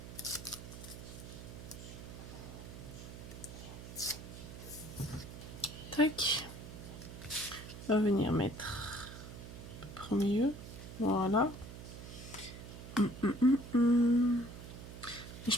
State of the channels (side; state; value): right; noise; hum, 12 dB below the sound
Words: Tac. On va venir mettre à peu près au milieu. Voilà. Et je